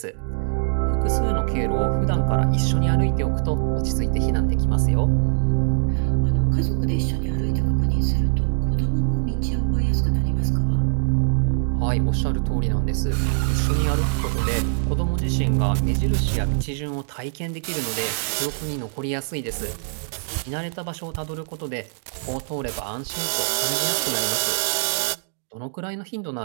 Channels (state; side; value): silent; left; digital silence